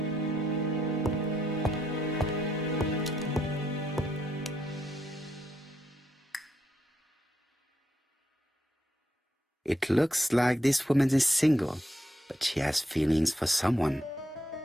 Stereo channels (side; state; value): both; normal; correlation 0.78